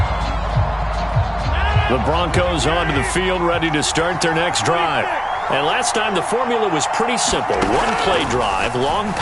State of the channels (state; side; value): identical; both; correlation 1.00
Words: The Broncos onto the field, ready to start their next drive. And last time the formula was pretty simple. 1-play drive, long